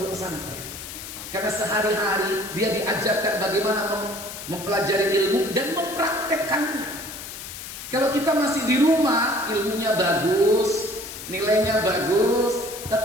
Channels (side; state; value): left; noise; hiss, 11 dB below the sound